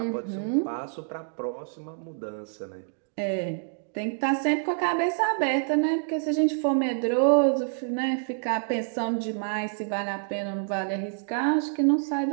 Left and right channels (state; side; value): silent; left; digital silence